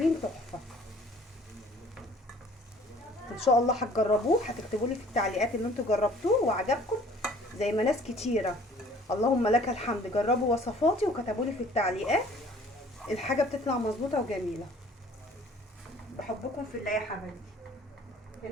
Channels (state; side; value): normal; both; correlation 0.53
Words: تحفه. ان شاء الله هتجربوه، هتكتبوا لي في التعليقات ان انتوا جربتوه وعجبكم زي ما ناس كتيره اللهم لك الحمد جربوا وصفاتي وكتبوا لي في التعليقات. الحاجه بتطلع مظبوطه وجميله. بحبكم في الله يا حبايبي.